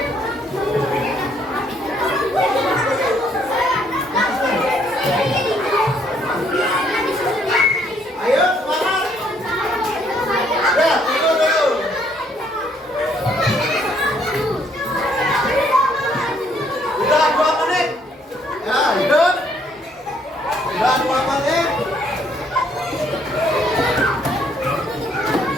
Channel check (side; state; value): both; normal; correlation 0.67